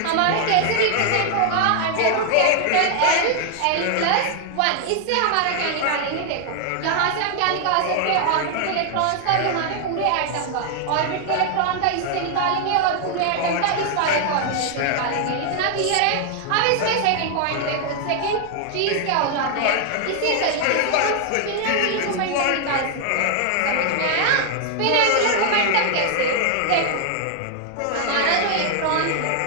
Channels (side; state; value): both; different; correlation 0.00